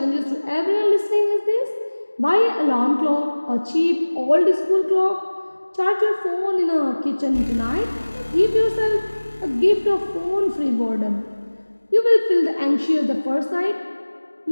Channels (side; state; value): both; inverted; correlation -1.00